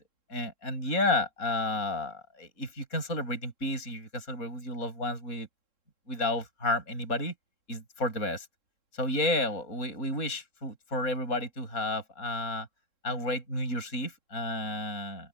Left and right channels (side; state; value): right; late; 3.7 ms